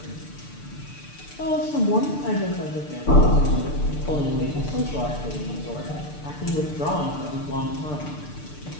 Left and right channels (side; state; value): right; late; 6.7 ms